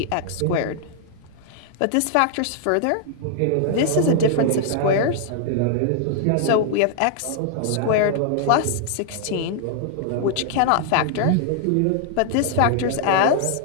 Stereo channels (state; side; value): different; both; correlation -0.01